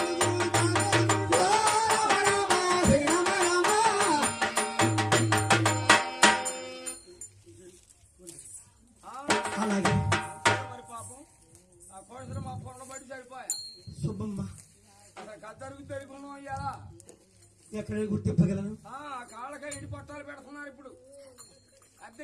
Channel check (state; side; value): identical; both; correlation 1.00